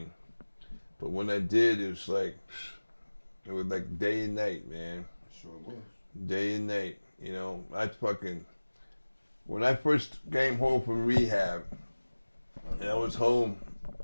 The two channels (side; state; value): both; inverted; correlation -1.00